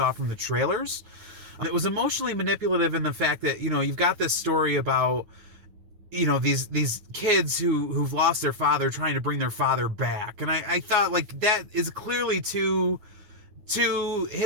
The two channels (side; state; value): left; late; 9.5 ms